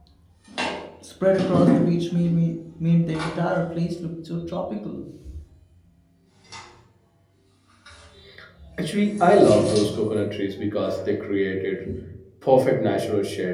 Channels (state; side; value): identical; both; correlation 1.00